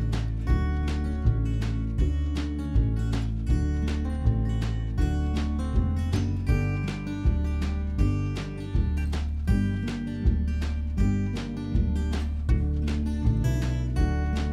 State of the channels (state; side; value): identical; both; correlation 1.00